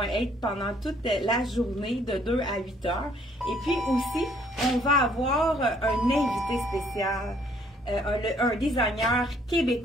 être pendant toute la journée de 2 à 8 heures. Et puis aussi, on va avoir un invité spécial, un designer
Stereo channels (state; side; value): normal; both; correlation 0.64